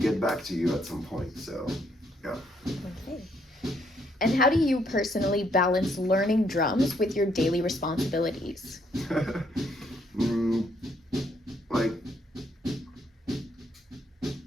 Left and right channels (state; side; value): normal; both; correlation 0.71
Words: get back to you at some point. So yeah. Okay. And how do you personally balance learning drums with your daily responsibilities? mm, like